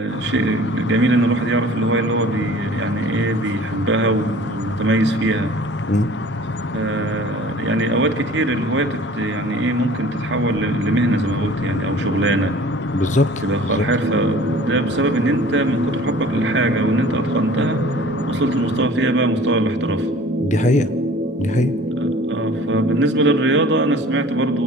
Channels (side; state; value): both; normal; correlation 0.47